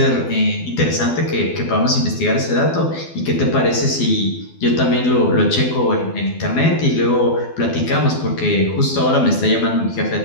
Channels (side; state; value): right; late; 12 ms